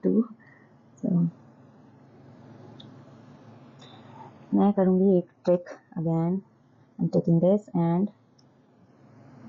to. मैं करूंगी एक trick again. I am taking this and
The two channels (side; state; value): both; identical; correlation 1.00